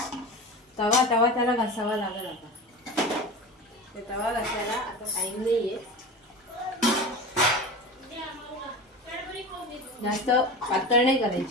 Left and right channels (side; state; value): both; normal; correlation 0.30